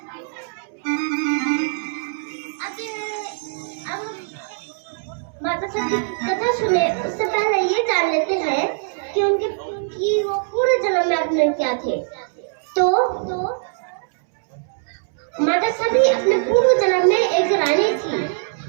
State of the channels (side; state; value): left; silent; 64 dB below the other